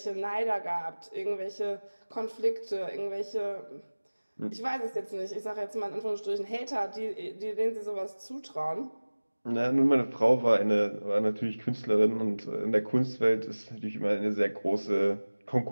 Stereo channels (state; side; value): inverted; both; correlation -1.00